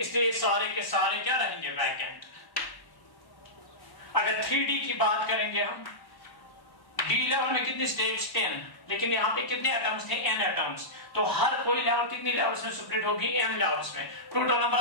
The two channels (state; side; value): late; right; 1.1 ms